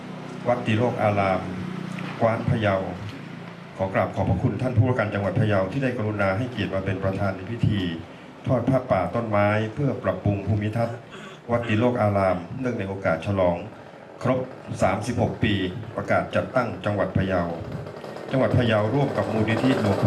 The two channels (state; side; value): identical; both; correlation 1.00